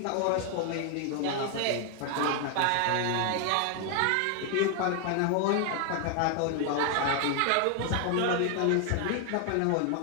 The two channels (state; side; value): different; both; correlation 0.00